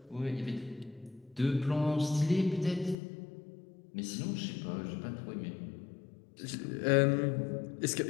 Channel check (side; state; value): right; drops out; at 3.0 s